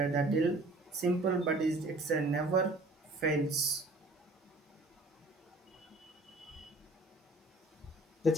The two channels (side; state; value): both; normal; correlation 0.51